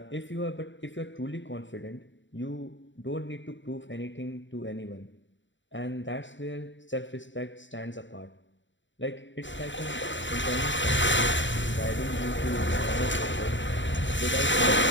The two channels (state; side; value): late; right; 0.54 ms